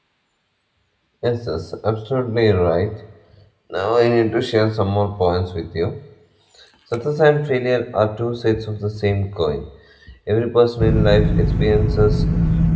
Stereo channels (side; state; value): both; identical; correlation 1.00